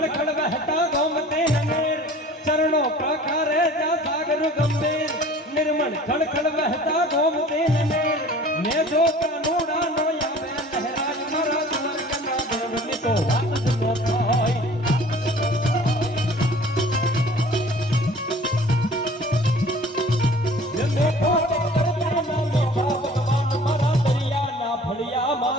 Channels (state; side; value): normal; both; correlation 0.47